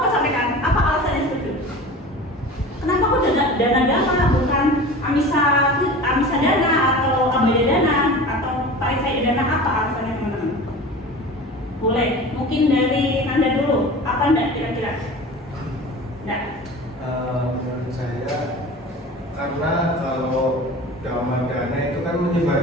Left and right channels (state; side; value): normal; both; correlation 0.36